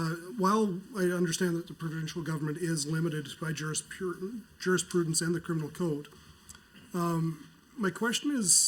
while I understand that the provincial government is limited by jurisprudence and the criminal code, my question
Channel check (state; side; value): identical; both; correlation 1.00